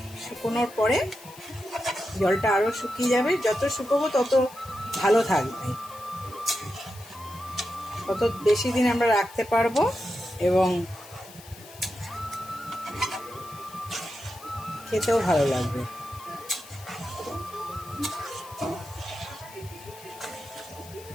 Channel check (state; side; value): noise; left; hiss, 19 dB below the sound